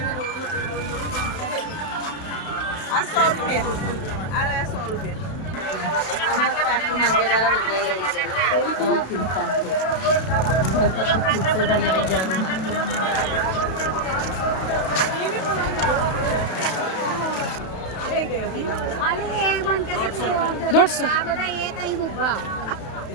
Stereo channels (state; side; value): late; right; 31 ms